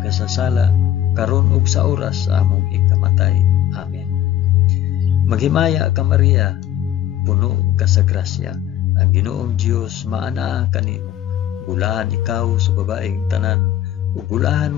karon ug sa oras sa among ikamatay. Amen. Maghimaya ka Maria, puno ka sa grasya, ang Ginoong Dios maanaa kanimo. Bulahan ikaw sa babaeng tanan, ug bulahan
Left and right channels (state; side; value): quieter; right; 11.8 dB